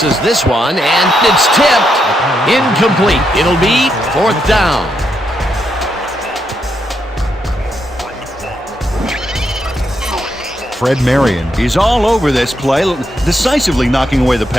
this one, and it's tipped. Incomplete. It'll be 4th down. Fred Marion is all over this play, decisively knocking away the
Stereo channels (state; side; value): normal; both; correlation 0.80